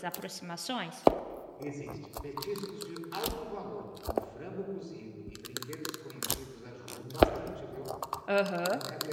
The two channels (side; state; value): both; identical; correlation 1.00